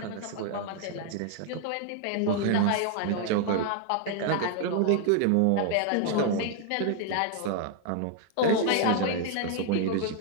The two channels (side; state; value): both; different; correlation 0.00